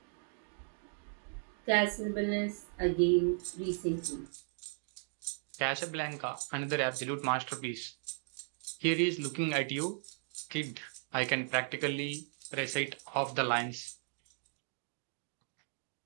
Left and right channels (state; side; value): silent; left; digital silence